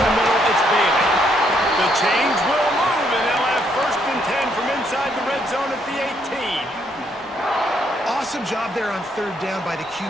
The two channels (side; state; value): both; normal; correlation 0.72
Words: the middle, it's Bailey. The change will move, and they'll have 1st and 10 from inside the red zone at the 18. Awesome job there on 3rd down by the